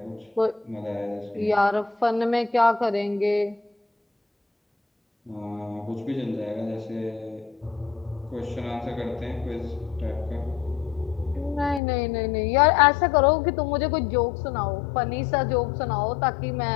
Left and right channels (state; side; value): drops out; right; at 11.8 s